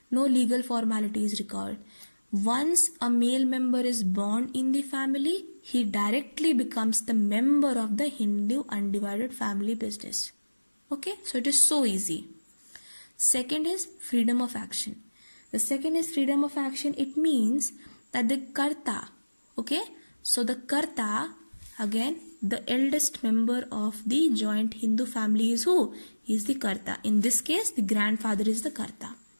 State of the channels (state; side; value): inverted; both; correlation -1.00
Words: no legal formality is required. Once a male member is born in the family, he directly becomes the member of the Hindu undivided family business. Okay, so it is so easy. Second is freedom of action. The second is freedom of action. It means that the Karta, okay, so the Karta, again the eldest member of the joint Hindu family is who? He is the Karta. In this case, the grandfather is the Karta.